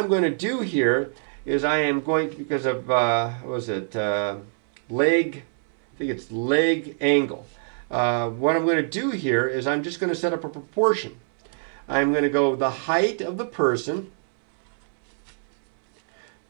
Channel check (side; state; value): left; silent; 62 dB below the other